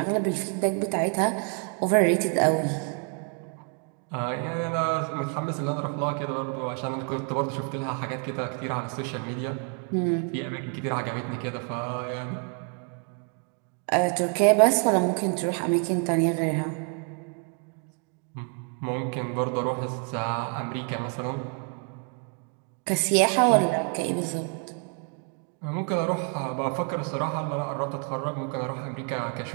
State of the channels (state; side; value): quieter; left; 37.8 dB